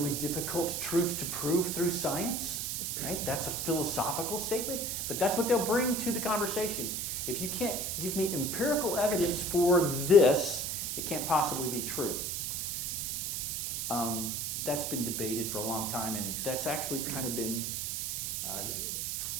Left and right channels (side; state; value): right; noise; hiss, 2 dB below the sound